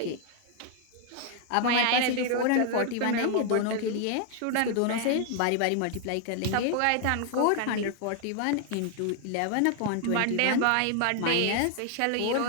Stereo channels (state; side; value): different; both; correlation 0.00